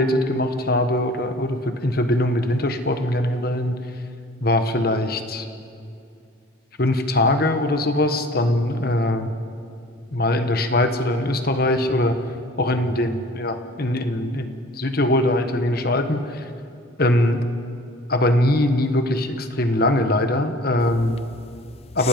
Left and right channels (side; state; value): both; normal; correlation 0.46